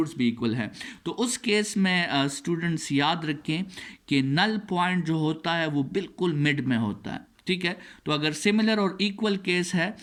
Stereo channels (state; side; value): identical; both; correlation 1.00